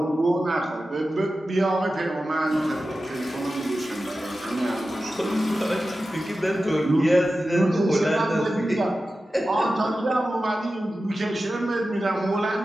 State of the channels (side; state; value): both; normal; correlation 0.93